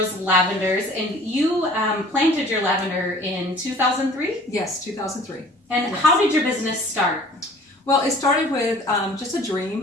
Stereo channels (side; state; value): both; normal; correlation 0.50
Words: lavenders, and you planted your lavender in 2003? Yes, 2003. And yes. How did your business start? Well, it started with just a